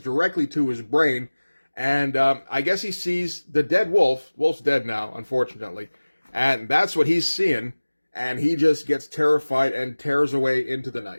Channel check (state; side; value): inverted; both; correlation -1.00